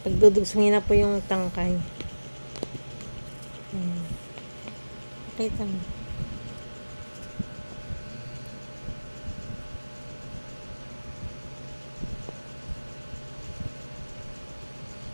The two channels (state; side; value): inverted; both; correlation -1.00